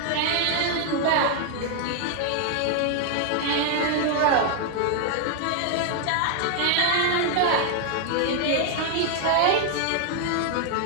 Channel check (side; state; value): both; different; correlation 0.00